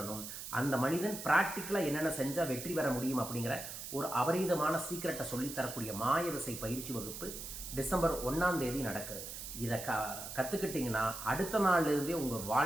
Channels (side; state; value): right; noise; hiss, 9 dB below the sound